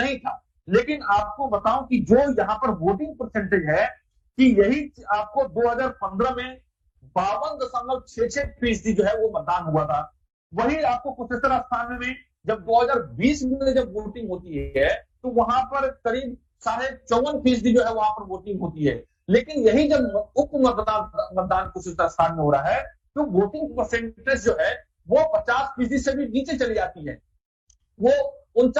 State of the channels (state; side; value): identical; both; correlation 1.00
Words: था। लेकिन आपको बताऊं कि जो यहाँ पर वोटिंग परसेंटेज है कि यही आपको 2015 में 52.66% जो है वो मतदान हुआ था। वही आपको कुशेश्वर स्थान में जब 2020 में जब वोटिंग होती है तो वहां पर करीब 54.5% जो है वहां पर वोटिंग होती है। लेकिन यही जब उप मतदान कुशेश्वर स्थान में हो रहा है तो वोटिंग परसेंटेज जो है वो 50% से भी नीचे चली जाती है, वो